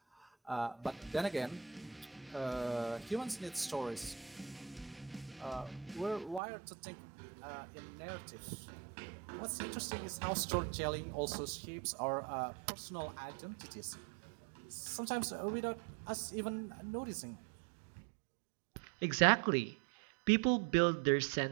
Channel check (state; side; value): drops out; left; at 6.4 s